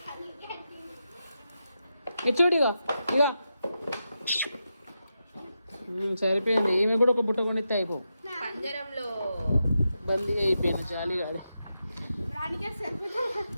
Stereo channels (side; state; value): both; inverted; correlation -0.88